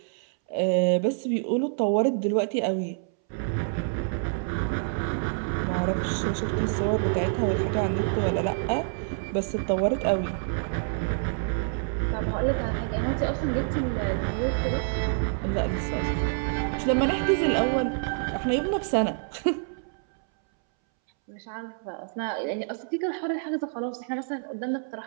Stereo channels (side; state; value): left; silent; 60 dB below the other